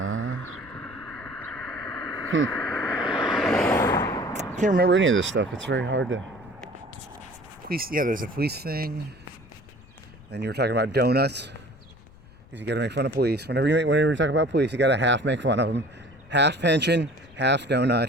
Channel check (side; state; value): left; noise; rumble, 24 dB below the sound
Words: can't remember any of this stuff. It's very hard to, there's a police thing. Then you were talking about donuts, because you got to make fun of police. Whenever you talk about police, you got to half make fun of them. Half pension, half